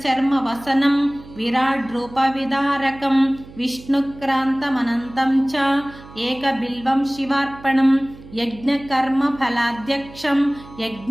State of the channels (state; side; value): noise; right; hum, 19 dB below the sound